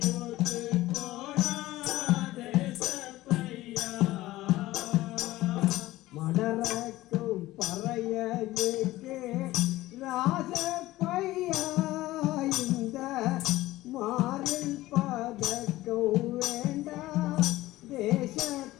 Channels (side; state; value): right; quieter; 17.0 dB